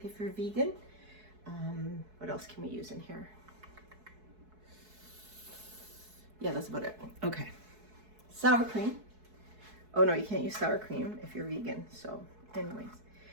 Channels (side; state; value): left; late; 4.7 ms